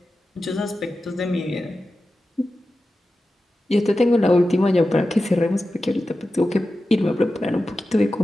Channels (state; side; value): normal; both; correlation 0.93